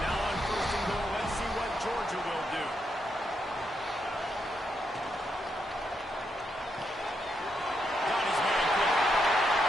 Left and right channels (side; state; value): both; normal; correlation 0.80